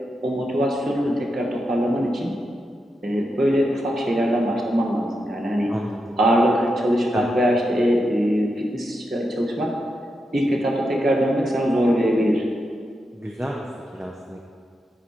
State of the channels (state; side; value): normal; both; correlation 0.86